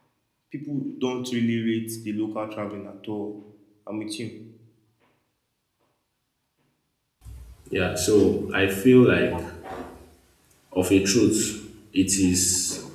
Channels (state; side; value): identical; both; correlation 1.00